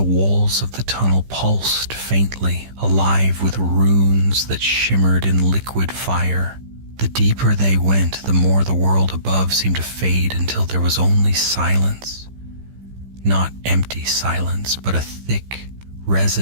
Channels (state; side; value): late; left; 15 ms